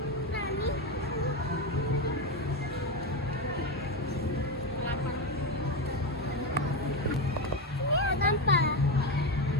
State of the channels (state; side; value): normal; both; correlation 0.13